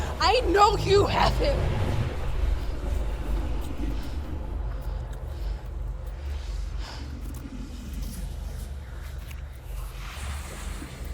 I know you have him.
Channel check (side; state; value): both; identical; correlation 1.00